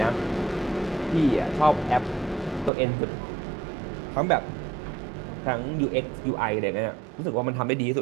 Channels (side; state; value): left; drops out; at 2.7 s